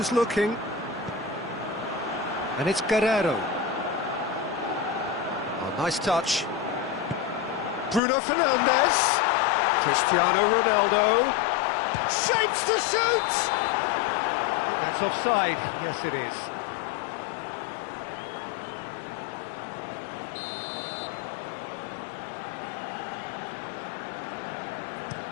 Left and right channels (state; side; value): drops out; right; at 8.0 s